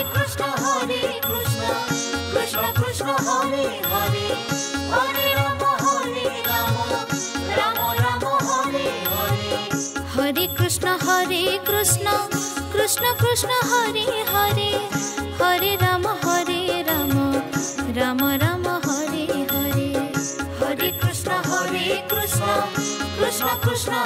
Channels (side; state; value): both; identical; correlation 1.00